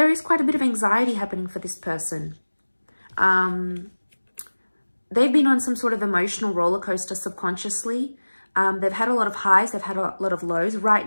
is quite a bit of anxiety happening for this person. They've been on some sort of emotional roller coaster subconsciously. They've had a lot of highs, they've had a lot of lows.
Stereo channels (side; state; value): both; inverted; correlation -1.00